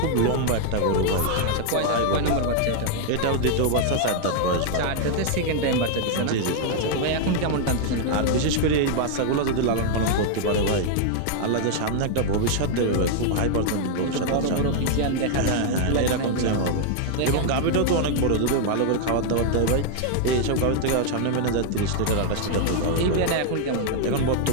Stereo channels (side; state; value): both; different; correlation 0.00